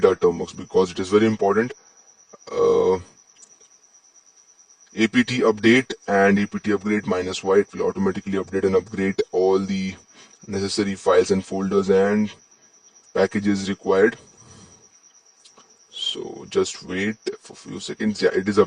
our Termux because it is very important. apt update and apt upgrade -y, it will automatically update and upgrade all the necessary files and folders and packages required. So just wait for a few seconds. Yeah, it is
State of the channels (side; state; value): both; identical; correlation 1.00